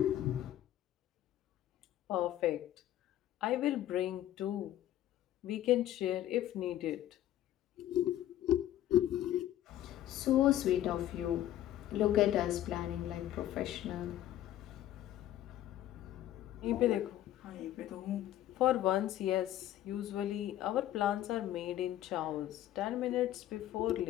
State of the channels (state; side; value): quieter; right; 12.9 dB